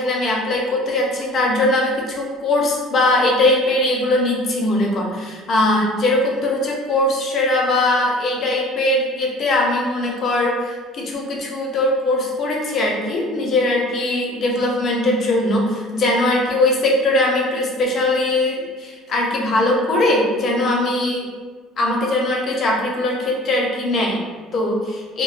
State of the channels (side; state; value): both; normal; correlation 0.45